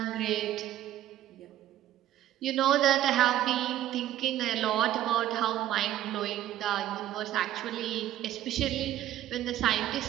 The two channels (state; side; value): quieter; left; 12.9 dB